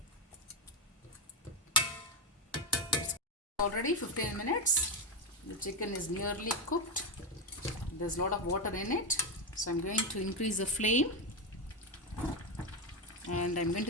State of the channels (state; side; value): normal; both; correlation 0.09